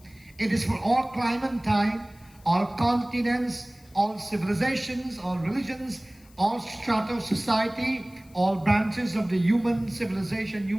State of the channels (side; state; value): left; noise; hiss, 28 dB below the sound